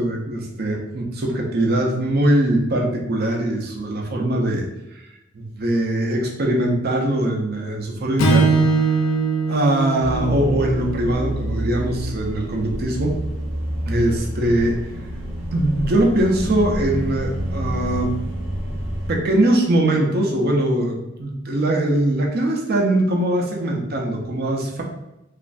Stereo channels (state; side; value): normal; both; correlation 0.66